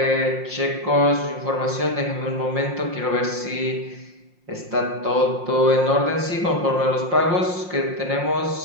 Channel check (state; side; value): late; left; 5.6 ms